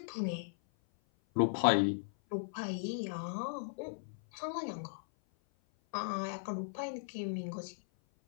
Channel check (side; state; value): right; silent; 53 dB below the other